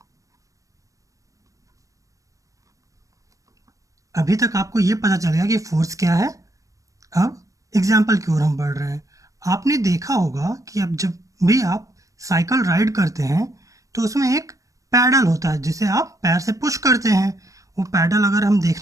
अभी तक आपको ये पता चल गया कि फोर्स क्या है। अब एग्जाम्पल की ओर हम बढ़ रहे हैं। आपने देखा होगा कि अब जब भी आप साइकिल राइड करते हैं तो उसमें एक पैडल होता है जिसे आप पैर से पुश करते हैं। वो पैडल अगर हम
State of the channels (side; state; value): left; late; 0.16 ms